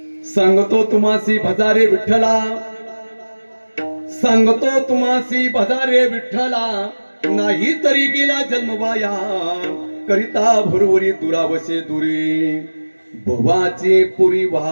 सांगतो तुम्हासी भजारे विठ्ठला, सांगतो तुम्हासी भजारे विठ्ठला, नाही तरी गेला जन्म वाया, करिता भुरवरी दुरावसे दुरी, भवाचे पुरी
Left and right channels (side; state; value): both; inverted; correlation -1.00